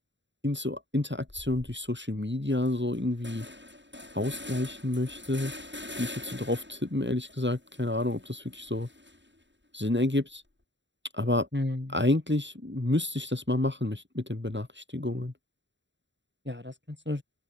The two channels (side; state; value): left; late; 0.53 ms